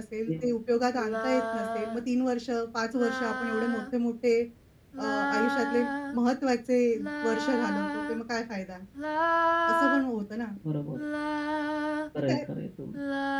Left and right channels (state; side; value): identical; both; correlation 1.00